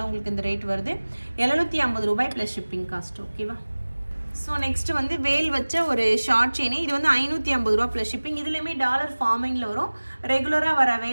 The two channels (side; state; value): both; inverted; correlation -1.00